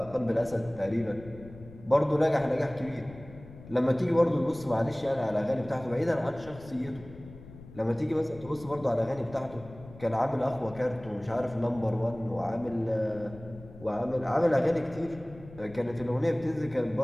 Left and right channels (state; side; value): noise; left; rumble, 18 dB below the sound